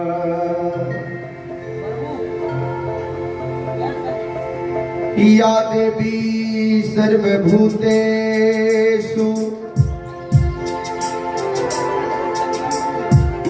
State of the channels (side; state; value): both; identical; correlation 1.00